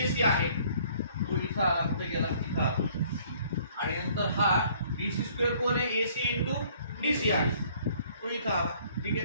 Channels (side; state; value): both; inverted; correlation -0.59